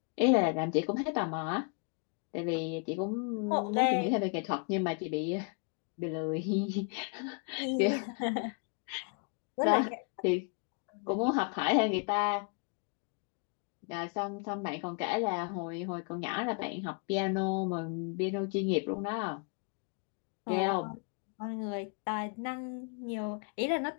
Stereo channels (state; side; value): quieter; right; 38.1 dB